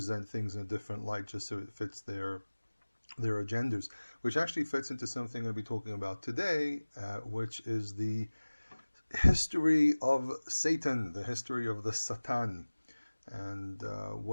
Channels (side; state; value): both; inverted; correlation -1.00